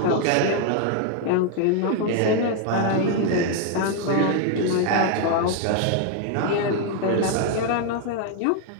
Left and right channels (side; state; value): both; different; correlation 0.00